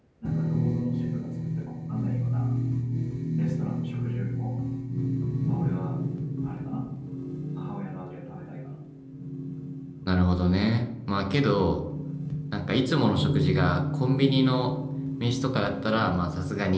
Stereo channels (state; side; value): identical; both; correlation 1.00